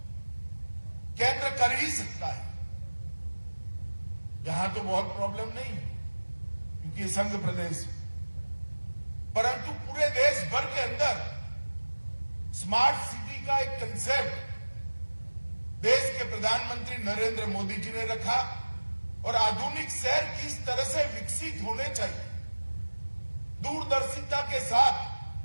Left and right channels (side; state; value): both; inverted; correlation -1.00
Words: केंद्र कर ही सकता है। यहां तो बहुत प्रॉब्लम नहीं है क्योंकि ये संघ प्रदेश है, परंतु पूरे देश भर के अंदर स्मार्ट सिटी का एक कंसेप्ट देश के प्रधानमंत्री नरेंद्र मोदी जी ने रखा। और आधुनिक शहर किस तरह से विकसित होने चाहिए, दूरदर्शिता के साथ